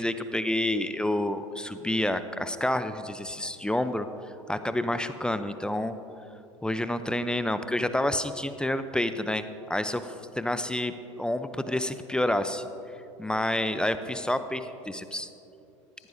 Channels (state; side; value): normal; both; correlation 0.81